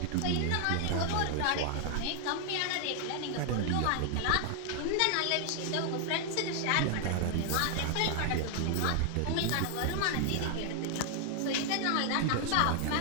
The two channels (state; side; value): different; both; correlation 0.00